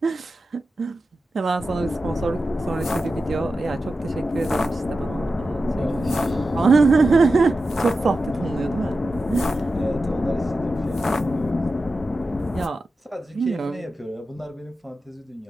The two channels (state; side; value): normal; both; correlation 0.92